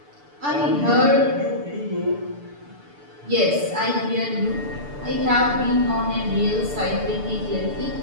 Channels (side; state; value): left; late; 6.9 ms